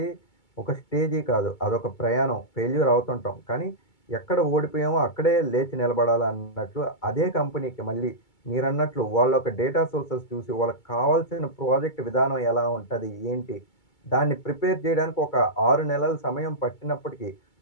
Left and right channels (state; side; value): late; right; 2.2 ms